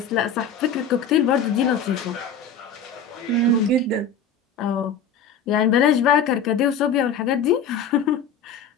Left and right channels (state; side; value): quieter; right; 5.5 dB